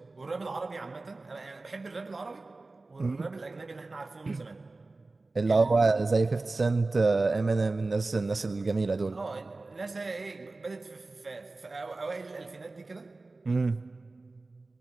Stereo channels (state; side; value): quieter; left; 3.4 dB